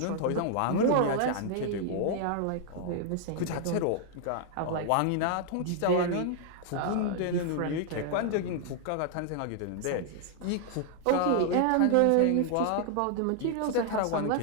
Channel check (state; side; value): different; both; correlation 0.00